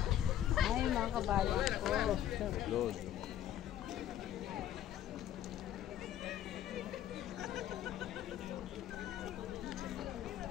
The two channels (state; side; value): quieter; right; 11.4 dB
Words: Ay mga kabayan ko. Lord.